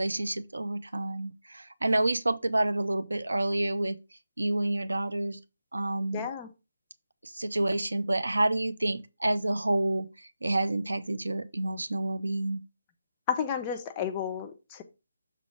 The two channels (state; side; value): inverted; both; correlation -0.92